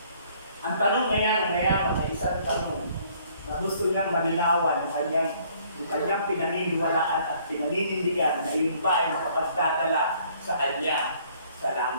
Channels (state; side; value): inverted; both; correlation -0.60